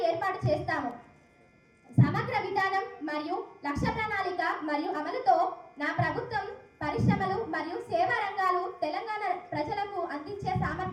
ఏర్పాటు చేస్తాము. సమగ్ర విధానం మరియు లక్ష్య ప్రణాళిక మరియు అమలుతో నా ప్రభుత్వం పరిశ్రమలు మరియు సేవా రంగాలు తెలంగాణ ప్రజలకు అందించే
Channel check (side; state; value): both; identical; correlation 1.00